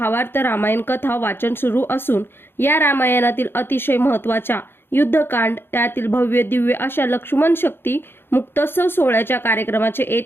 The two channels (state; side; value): late; right; 0.11 ms